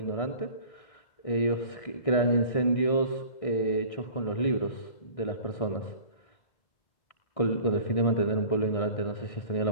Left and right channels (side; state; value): right; late; 1.6 ms